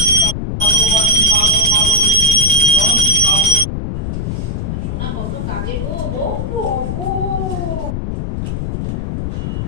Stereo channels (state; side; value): noise; left; rumble, 3 dB below the sound